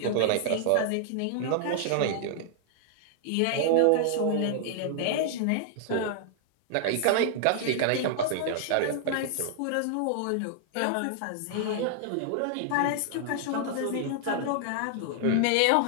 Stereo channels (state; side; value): different; both; correlation -0.01